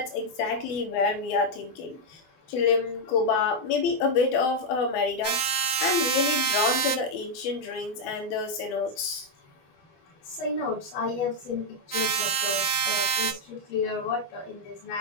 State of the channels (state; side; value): late; right; 12 ms